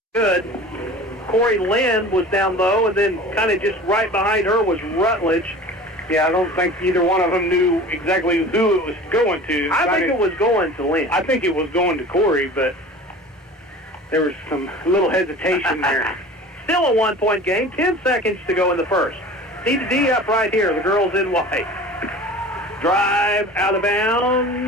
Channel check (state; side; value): normal; both; correlation 0.40